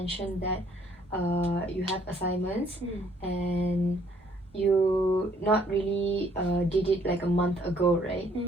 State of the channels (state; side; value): normal; both; correlation 0.64